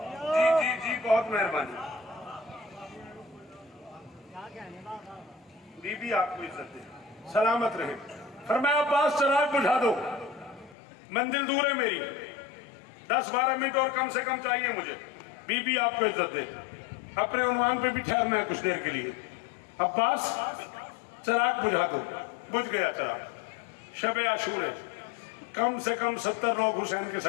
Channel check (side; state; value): right; drops out; at 10.8 s